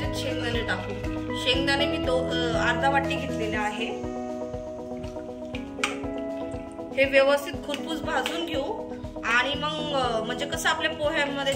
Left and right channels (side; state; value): both; identical; correlation 1.00